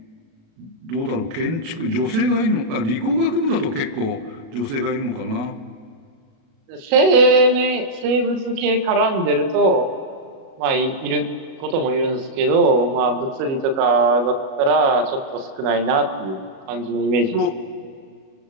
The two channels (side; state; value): left; late; 37 ms